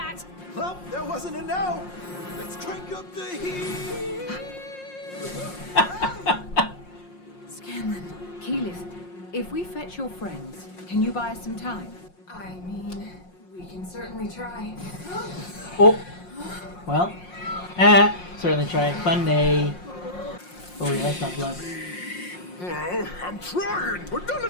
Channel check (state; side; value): late; right; 5.6 ms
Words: Well, that wasn't a no. Let's crank up the heat. Scanlan, Keyleth, if we fetch your friends, can you buy us some time? I mean, we can certainly try. Oh. Well. Certainly try. Fun day. Oh, yeah, that's not blood. Well, I'm trying, but none